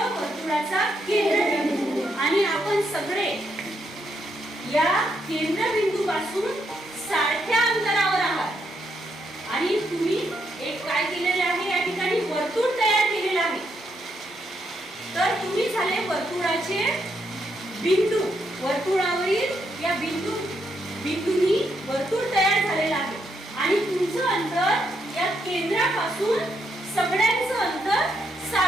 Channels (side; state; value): both; normal; correlation 0.78